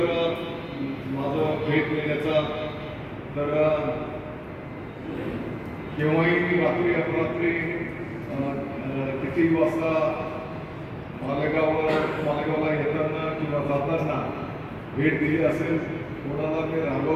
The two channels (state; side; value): identical; both; correlation 1.00